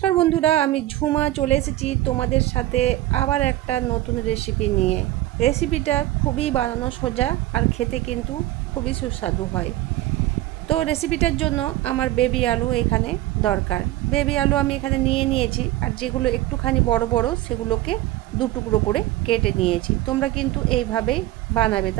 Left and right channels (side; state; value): left; quieter; 15.7 dB